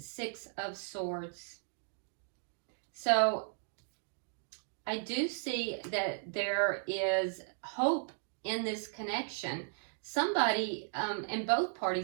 of Swords. So I do see that there is hope in this connection. Somebody, and both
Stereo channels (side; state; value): left; silent; digital silence